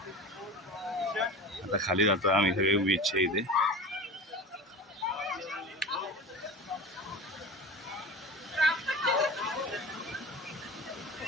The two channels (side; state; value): both; normal; correlation 0.32